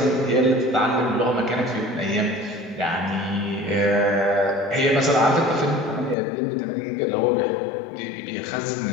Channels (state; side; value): drops out; right; at 6.2 s